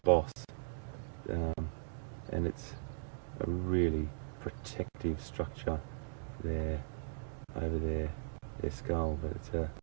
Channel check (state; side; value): silent; left; digital silence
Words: and it's a really protective structure there over their skull. But it's